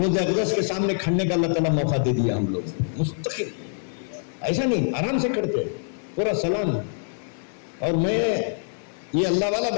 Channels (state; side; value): silent; right; 62 dB below the other